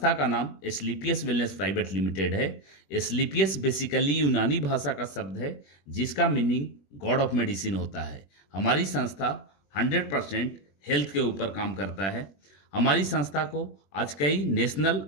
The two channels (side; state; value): right; late; 21 ms